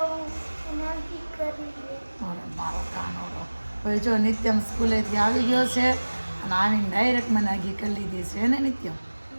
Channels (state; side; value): inverted; both; correlation -1.00